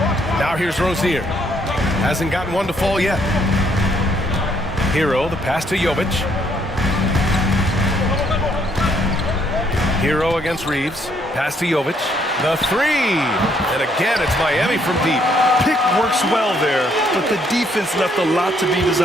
Now here's Rozier. Hasn't gotten one to fall yet. Hero, the pass to Jovic. Hero against Reeves. Pass to Jovic. The three. And again, it's Miami from deep. Pick works well there, but the defense left a lot to be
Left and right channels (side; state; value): both; normal; correlation 0.69